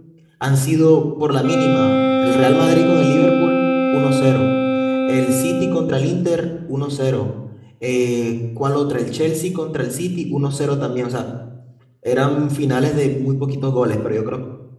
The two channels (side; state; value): both; identical; correlation 1.00